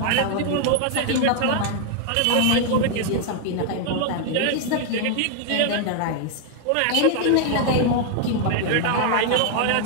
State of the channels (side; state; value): both; different; correlation 0.00